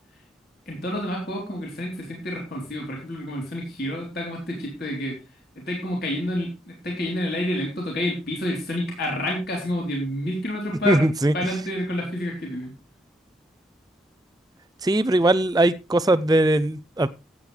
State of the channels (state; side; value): normal; both; correlation 0.74